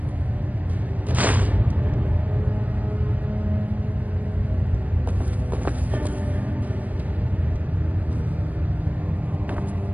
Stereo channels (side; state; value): left; late; 0.076 ms